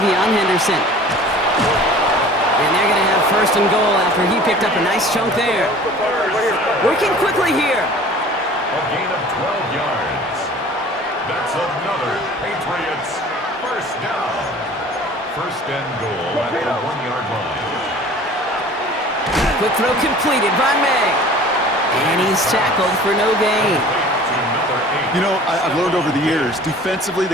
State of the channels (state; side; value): normal; both; correlation 0.46